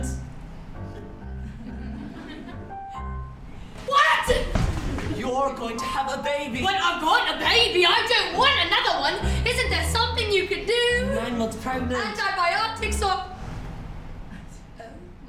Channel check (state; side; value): identical; both; correlation 1.00